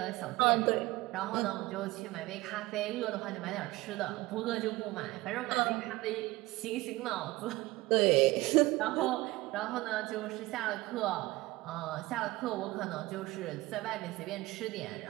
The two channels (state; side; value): quieter; left; 19.8 dB